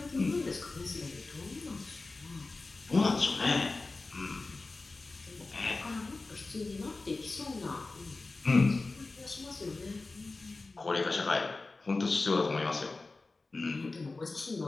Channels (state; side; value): quieter; right; 3.5 dB